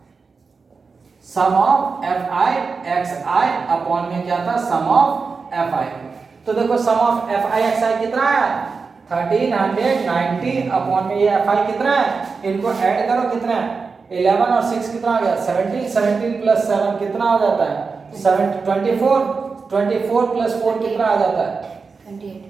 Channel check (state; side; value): quieter; left; 4.8 dB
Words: sum of F I x I upon में क्या था सम ऑफ एफ आई। तो देखो sum of F I x i कितना है 1390 अपॉन में ये एफ आई कितना है, इनको ऐड करो कितना है 11 और 6 कितना आ गया 17, 17 प्लस 7 कितना हो जाता है 24, 24 प्लस 4 कितना आ जाता है